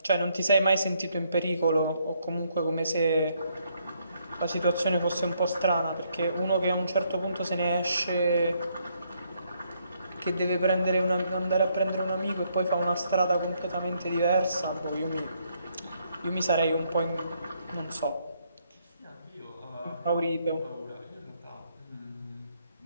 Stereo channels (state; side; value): inverted; both; correlation -0.72